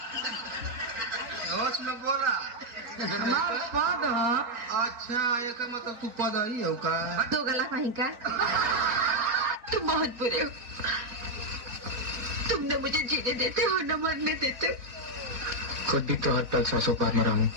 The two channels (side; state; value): left; late; 4.0 ms